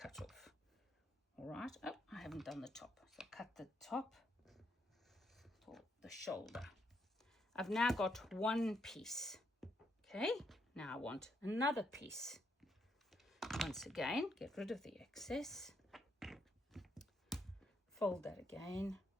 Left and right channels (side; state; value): both; normal; correlation 0.77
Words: off. All right. Oh, I haven't done the top. So cut the top for the shoulder. I've now got one piece. Okay, now I want another piece. Once again, get rid of the excess. Fold that again.